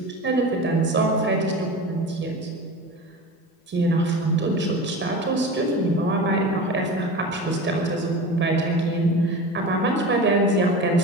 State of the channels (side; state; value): both; normal; correlation 0.31